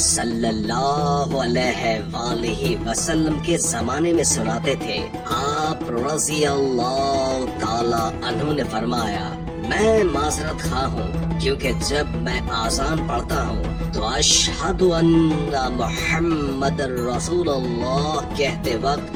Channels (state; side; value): identical; both; correlation 1.00